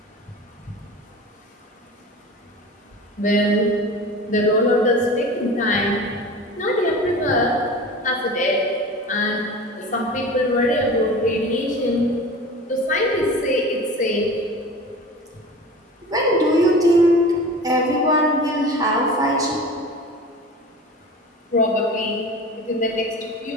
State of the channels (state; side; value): normal; both; correlation 0.36